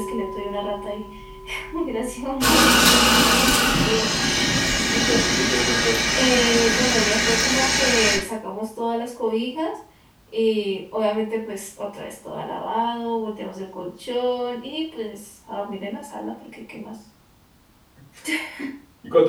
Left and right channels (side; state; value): both; identical; correlation 1.00